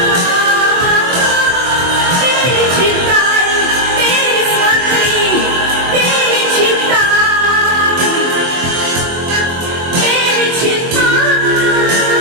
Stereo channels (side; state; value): left; late; 24 ms